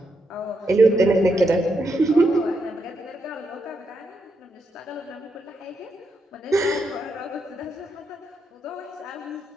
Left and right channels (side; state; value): both; normal; correlation 0.81